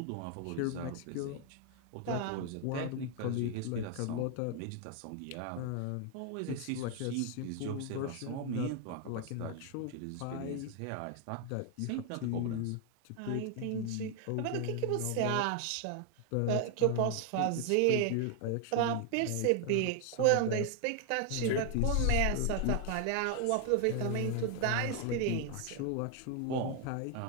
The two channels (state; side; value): different; both; correlation 0.00